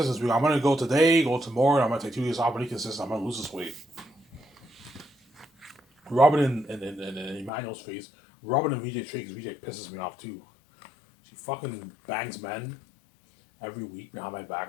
this week. I'm gonna go today, go tomorrow, and I'm gonna take 2 days off. I'm gonna be consistent. I'm gonna lose this weight. Robin and Emmanuel's face. Robin and VJ Tricks. VJ pisses me off too. She fucking bangs men every week behind my back.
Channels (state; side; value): drops out; right; at 7.5 s